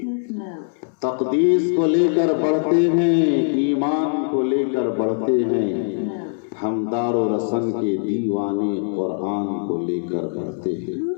تقدیس کو لے کر بڑھتے ہیں، ایمان کو لے کر بڑھتے ہیں، ہم دار و رسن کے دیوانے قرآن کو لے کر بڑھتے ہیں۔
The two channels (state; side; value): silent; right; 65 dB below the other